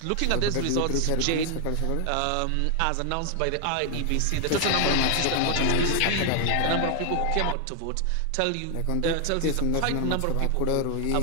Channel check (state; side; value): different; both; correlation 0.00